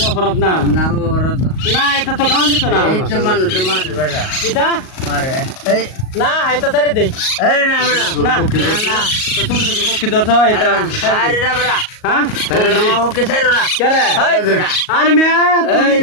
অপরাধ না না ওরত না এটা তো খাওয়ান দিত না এই তো মানুষ মারে বেটা কিতা মারে এই না এটা ছেড়ে দেই এই না বেটা না না তো ছোট ছোট ভক্তি ধরছ এটা আরে না বেটা হ্যাঁ ওকে সাইরো না কেরে এই বেটা আরে মে তুমি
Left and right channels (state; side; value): late; right; 38 ms